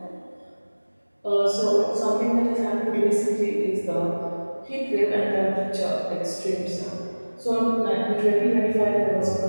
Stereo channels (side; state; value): both; inverted; correlation -1.00